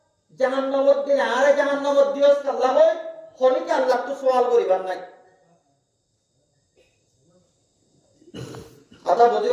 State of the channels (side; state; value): both; identical; correlation 1.00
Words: জাহান্নামত দিলে আরে জাহান্নামত দিওস আল্লাহ হয় অনেকে আল্লাহ তো সওয়াল করিবার নাই কথা